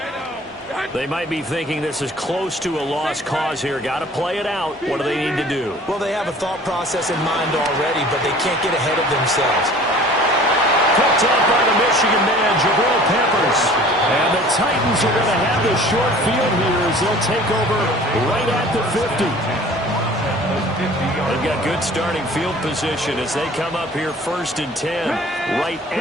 They might be thinking this is close to a lost cause here. Got to play it out. What do they need to do? Well, they have a thought process in mind already, but they can't get ahead of themselves. Picked up by the Michigan man, Jabril Peppers. And the Titans are going to have the short field here as they'll take over right at the 50. They've got good starting field position as they come up here 1st and 10, right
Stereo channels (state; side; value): normal; both; correlation 0.48